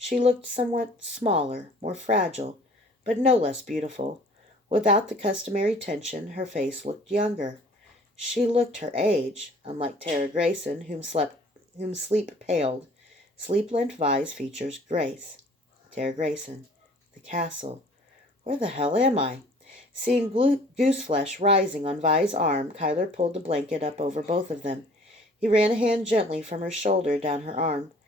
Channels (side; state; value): both; normal; correlation 0.52